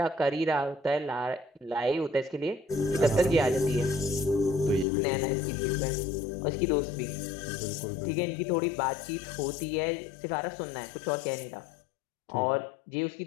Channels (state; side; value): drops out; right; at 4.9 s